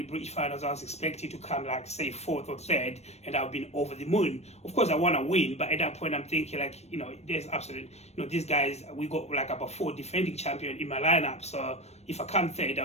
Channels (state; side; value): late; right; 0.31 ms